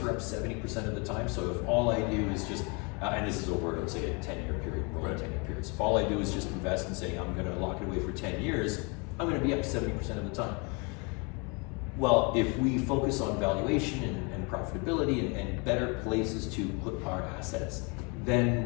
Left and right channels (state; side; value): quieter; right; 31.5 dB